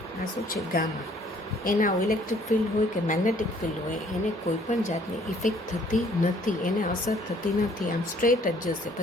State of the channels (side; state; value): both; normal; correlation 0.60